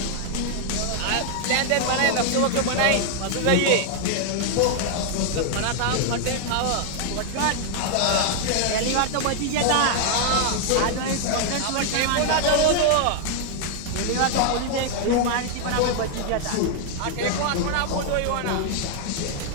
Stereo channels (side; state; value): both; different; correlation 0.00